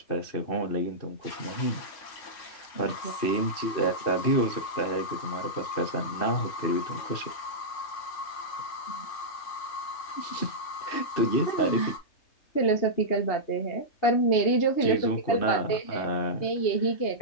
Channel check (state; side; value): late; right; 3.3 ms